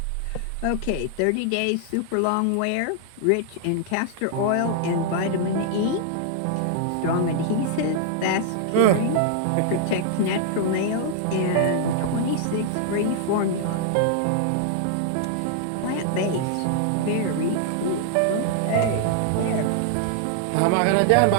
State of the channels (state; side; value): different; both; correlation 0.00